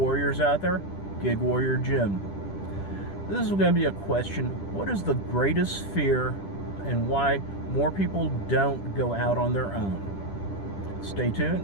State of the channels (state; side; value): late; right; 10 ms